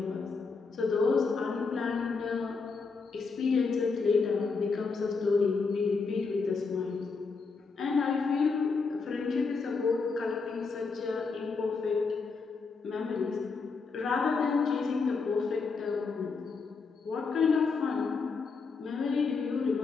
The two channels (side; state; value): right; quieter; 4.7 dB